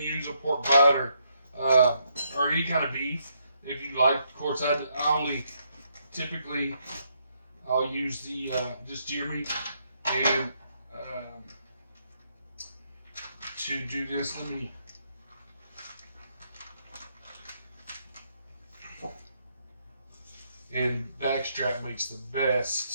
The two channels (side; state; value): both; inverted; correlation -0.76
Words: a pork butt, or any kind of beef if you like. Of course, I only typically I'll use the just deer meat. And to do this, let me. And backstrap makes the